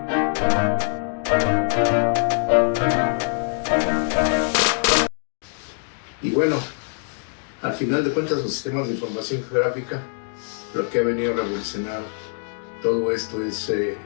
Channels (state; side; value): silent; right; 55 dB below the other